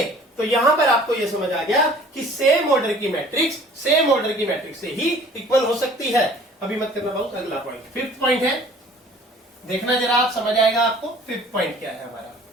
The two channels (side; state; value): both; normal; correlation 0.50